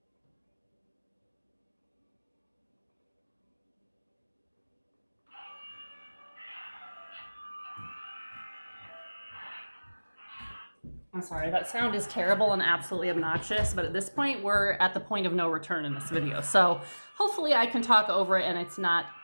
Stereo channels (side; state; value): both; inverted; correlation -1.00